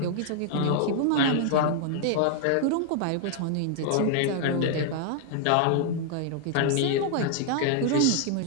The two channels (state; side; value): different; both; correlation -0.01